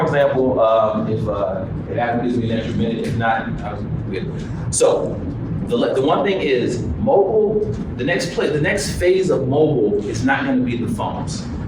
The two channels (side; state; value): both; identical; correlation 1.00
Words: example, if Adam gives me an extra minute, if not, I'll good. So, the one thing is, mobile, the next phase of mobile is not gonna be the phones,